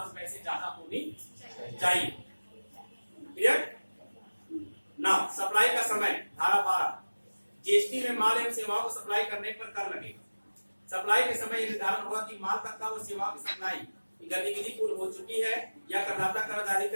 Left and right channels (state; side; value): inverted; both; correlation -1.00